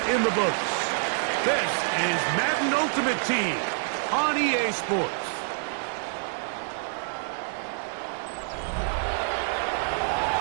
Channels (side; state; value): left; silent; digital silence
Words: in the books. This is Madden Ultimate Team on EA Sports.